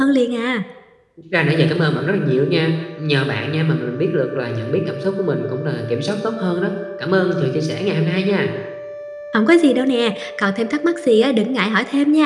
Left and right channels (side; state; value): both; identical; correlation 1.00